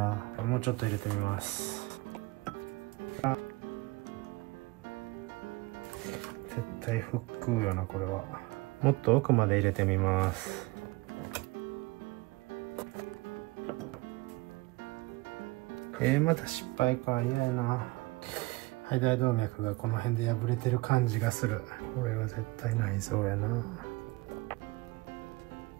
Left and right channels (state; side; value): quieter; left; 22.8 dB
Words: もうちょっと入れてみます。絶対腹腔よな、これは。もっと奥まで入れてみます。また失敗か。嫌やな。肺大動脈がこの辺で破れてる感じがする。これは絶対内臓やな。